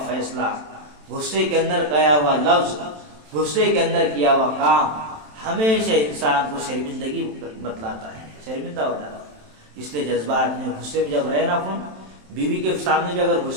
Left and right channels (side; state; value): left; late; 27 ms